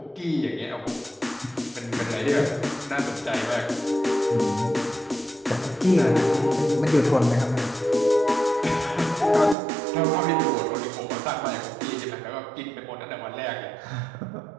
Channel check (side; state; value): left; drops out; at 9.6 s